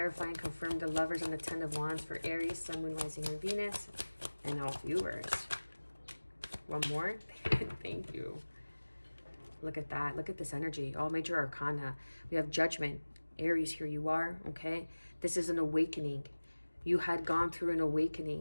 and confirm the Lovers and the Ten of Wands for Aries, Sun, Moon, Rising, and Venus, and all viewers. One more. Thank you. Look at that. Look at this energy. All major arcana. We have Judgment. Aries, here you are, okay? This is an awakening. You had gone through an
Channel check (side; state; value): both; inverted; correlation -1.00